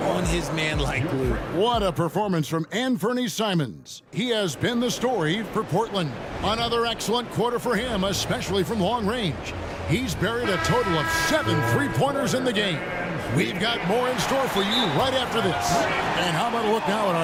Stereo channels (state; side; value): identical; both; correlation 1.00